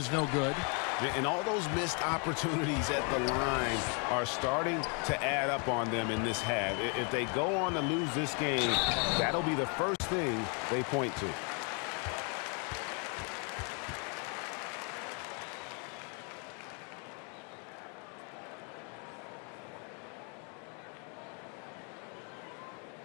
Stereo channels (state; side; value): quieter; right; 37.0 dB